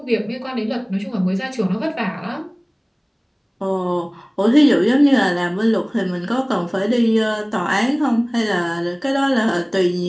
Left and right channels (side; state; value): both; identical; correlation 1.00